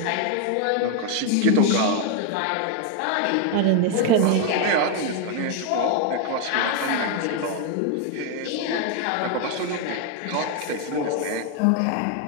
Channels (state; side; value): different; both; correlation 0.01